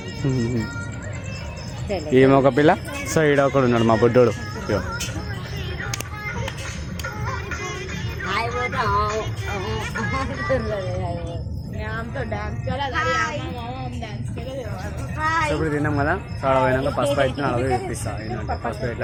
ఈమె ఒక పిల్ల. సో ఈడ ఒకడు ఉన్నాడు మా బుడ్డోడు. ఇప్పుడు తిన్నాం కదా, సో అక్కడ పోయినాక పసుపు అయితే అడవి చూపిస్తాను. ఏంటంటే పసుపు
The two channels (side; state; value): both; identical; correlation 1.00